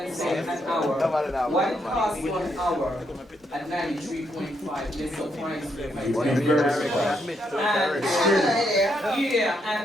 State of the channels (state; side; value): normal; both; correlation 0.77